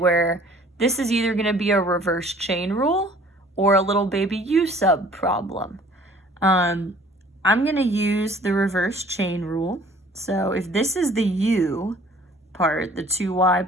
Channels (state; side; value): normal; both; correlation 0.53